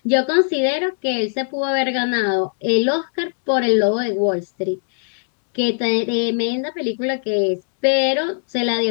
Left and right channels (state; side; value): silent; right; digital silence